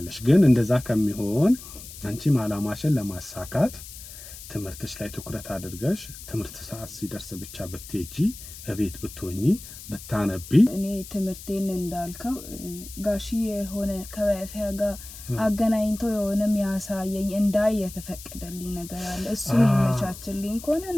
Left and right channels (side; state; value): left; noise; hiss, 14 dB below the sound